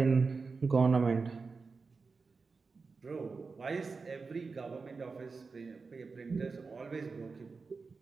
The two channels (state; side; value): quieter; left; 4.5 dB